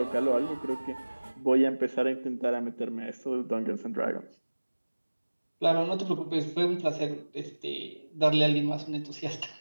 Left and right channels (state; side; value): inverted; both; correlation -1.00